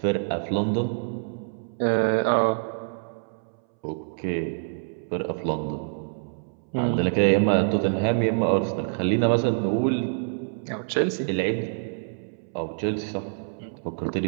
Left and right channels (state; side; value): silent; left; 61 dB below the other